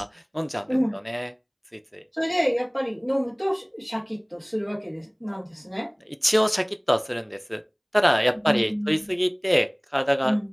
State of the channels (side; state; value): both; identical; correlation 1.00